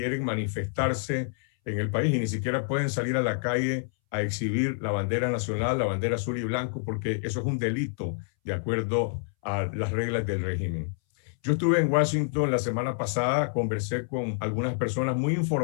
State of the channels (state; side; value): silent; right; 60 dB below the other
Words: manifestarse en el país y ni siquiera pueden salir a la calle a exhibir la bandera nacional, la bandera azul y blanco, porque eso es un delito de acuerdo a las reglas del régimen. Yo estuve en Washington la semana pasada, conversé con algunas personas muy